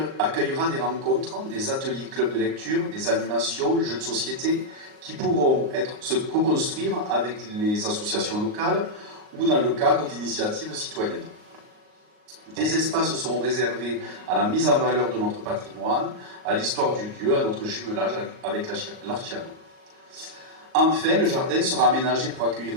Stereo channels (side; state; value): left; late; 38 ms